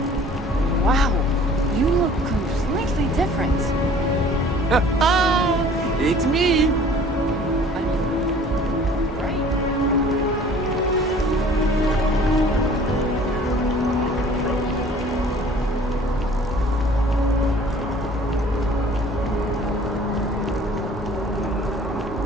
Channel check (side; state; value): both; normal; correlation 0.50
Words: Wow, you look completely different. It's me.